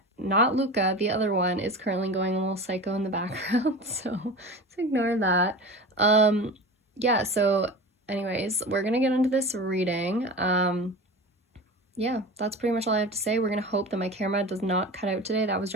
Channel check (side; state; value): both; normal; correlation 0.32